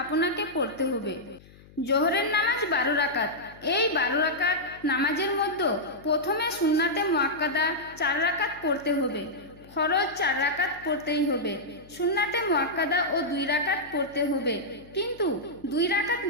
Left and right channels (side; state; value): left; noise; hum, 23 dB below the sound